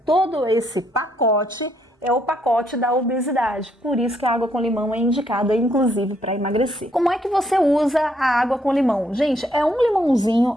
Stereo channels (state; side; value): normal; both; correlation 0.72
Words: Todo esse pacote é o pacote da obesidade, por isso que a água com limão é indicada, inclusive, para emagrecer. Como é que você usa a água com limão? Gente, é um